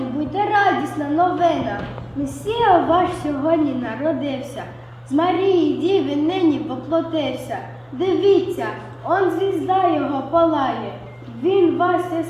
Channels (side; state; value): both; identical; correlation 1.00